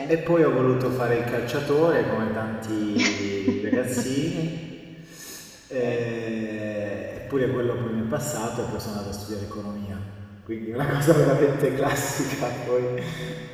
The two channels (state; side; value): identical; both; correlation 1.00